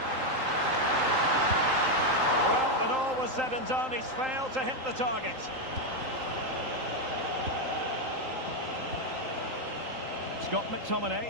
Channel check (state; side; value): late; left; 3.8 ms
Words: Well, when all was said and done, he's failed to hit the target. Scott